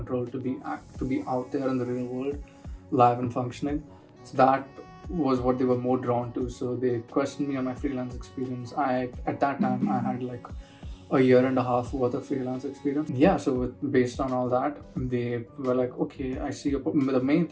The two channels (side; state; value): both; identical; correlation 1.00